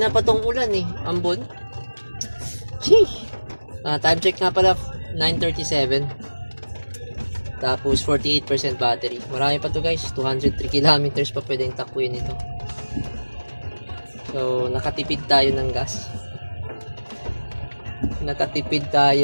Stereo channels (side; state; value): both; inverted; correlation -1.00